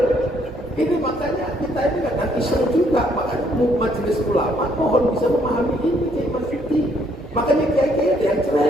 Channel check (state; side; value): normal; both; correlation 0.68